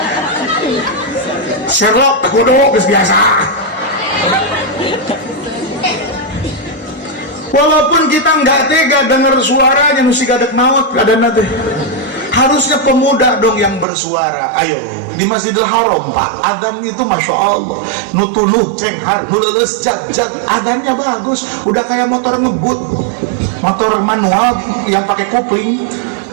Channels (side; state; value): left; drops out; at 13.9 s